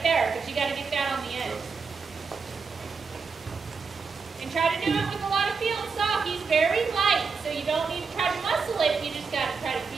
there, but you got to get that on the end. And try to do it with a lot of feel and soft. He's very light, so you don't need to try to muscle it. You just got to try to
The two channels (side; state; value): left; quieter; 5.1 dB